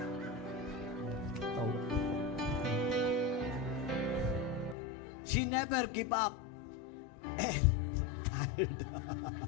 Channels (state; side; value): drops out; right; at 4.8 s